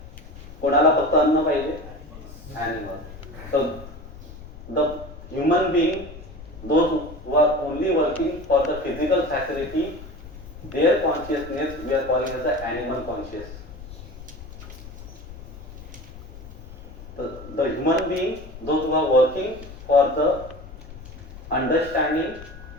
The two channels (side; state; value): left; noise; rumble, 15 dB below the sound